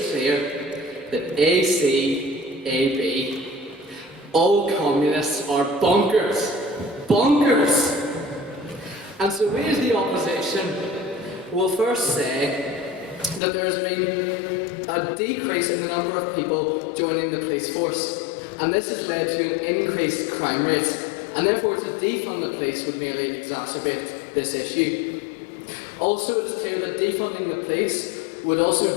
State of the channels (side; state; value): right; drops out; at 13.4 s